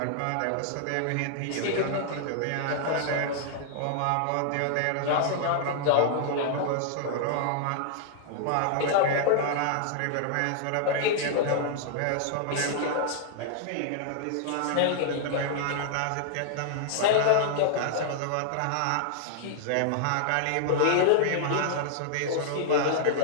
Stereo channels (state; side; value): different; both; correlation -0.01